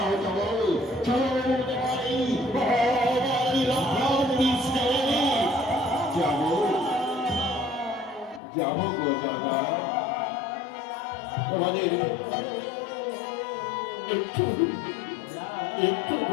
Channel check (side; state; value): right; drops out; at 8.4 s